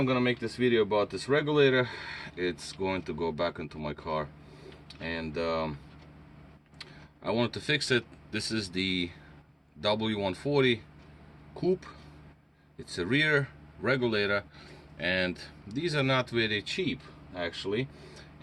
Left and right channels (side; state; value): both; identical; correlation 1.00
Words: gonna make this video about this regulator. It's going to go back into my car, and I wanted to fix it. This is the W140 coupe. It's a rear regulator, and these are not very cheap actually.